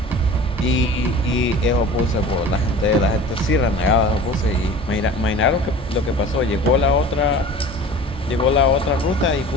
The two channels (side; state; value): both; normal; correlation 0.40